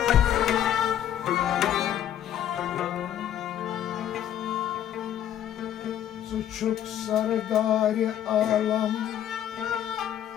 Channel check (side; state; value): right; quieter; 10.8 dB